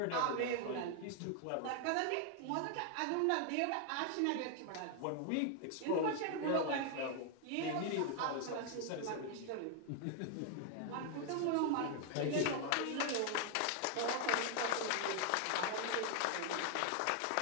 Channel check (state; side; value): different; both; correlation 0.00